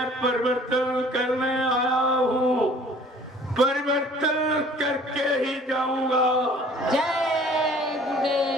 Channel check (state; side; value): normal; both; correlation 0.52